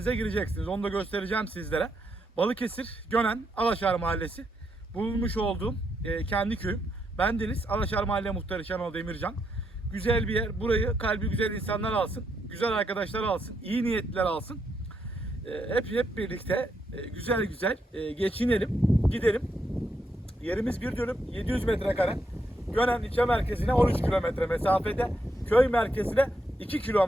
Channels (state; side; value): normal; both; correlation 0.79